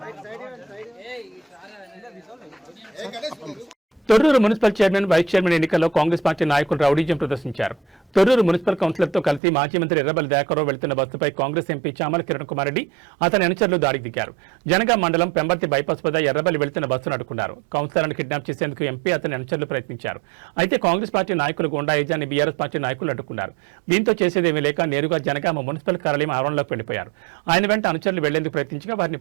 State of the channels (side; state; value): left; drops out; at 9.4 s